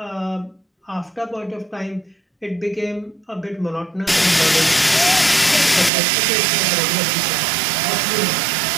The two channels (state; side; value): drops out; left; at 5.9 s